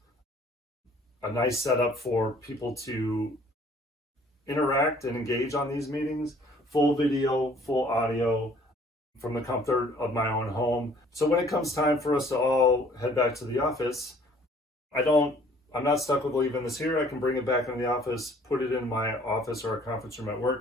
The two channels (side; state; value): both; normal; correlation 0.56